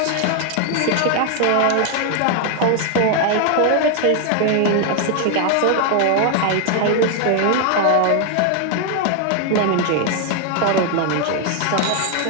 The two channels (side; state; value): both; different; correlation 0.00